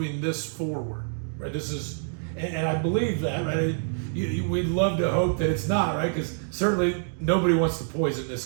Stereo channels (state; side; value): silent; left; digital silence